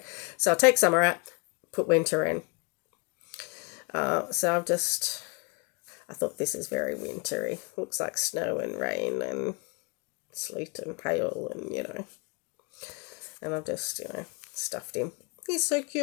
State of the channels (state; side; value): quieter; right; 31.5 dB